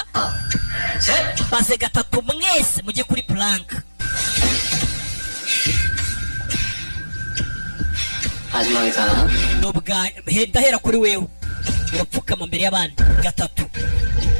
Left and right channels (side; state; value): both; inverted; correlation -1.00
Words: maze gatatu mwese mujye kuri plank 마지막이다. nubwa ndahera kuri wewe urapfukama mbere y'abandi gatatu